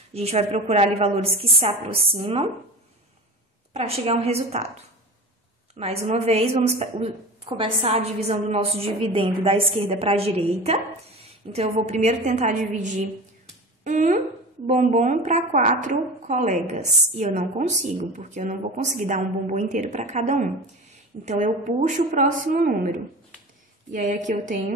A gente vai procurar ali valores que se aproximam para chegar a um resultado. Mais uma vez, vamos começar a divisão do nosso dividendo da esquerda para a direita. Então, eu vou primeiro tentar dividir um bombom para 4 colegas. E eu não consigo, porque eu não vou conseguir dar um bombom inteiro para cada um. Então, eu puxo o próximo número. E aí, aqui eu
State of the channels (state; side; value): normal; both; correlation 0.34